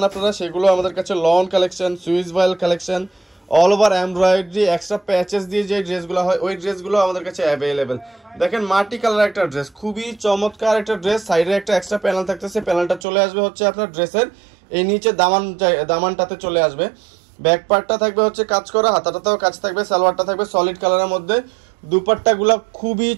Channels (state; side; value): drops out; left; at 13.0 s